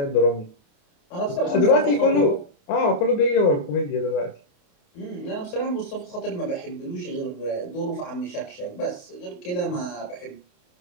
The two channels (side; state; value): right; late; 28 ms